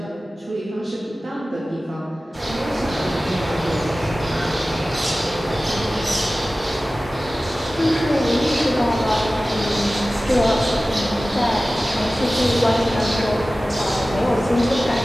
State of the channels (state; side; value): normal; both; correlation 0.96